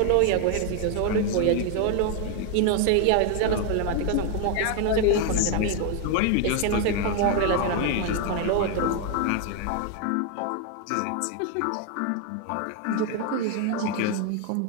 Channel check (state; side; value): different; both; correlation 0.01